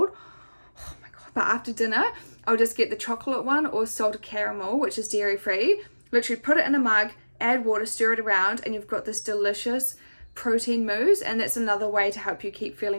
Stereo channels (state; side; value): inverted; both; correlation -1.00